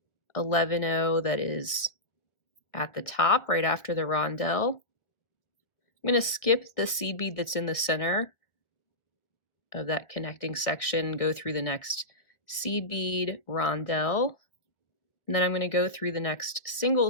11-0 that is at the top right after the rondelle. I'm going to skip the seed bead that's in the center of that connecting section, go through the next seed bead, rondelle, and then I'm going to go through the next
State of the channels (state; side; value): late; right; 1.4 ms